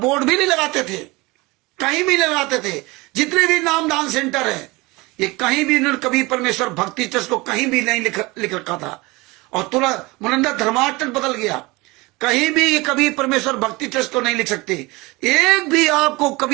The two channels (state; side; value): quieter; left; 23.3 dB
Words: भी नहीं लगाते थे, कहीं भी नहीं लगाते थे। जितने भी नामदान सेंटर है, ये कहीं भी इन्होंने कबीर परमेश्वर भक्ति ट्रस्ट को कहीं भी नहीं लिख रखा था। और तुरंत मुनिंदर धर्माश ट्रस्ट बदल गया, कहीं भी ये कबीर परमेश्वर भक्ति ट्रस्ट को नहीं लिख सकते। एक भी आपको